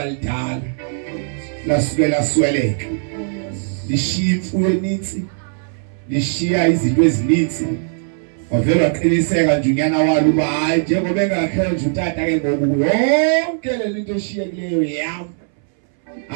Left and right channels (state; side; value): silent; left; 64 dB below the other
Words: lidala. Lasukela sweleka. Lishiya imfuyo eninzi. Lishiya izinto ezininzi. Wavela waqiniseka nje unyana walo uba hayi njengoba engakhe nje utata ke ngoku yonke le nto eshiyekileyo yami.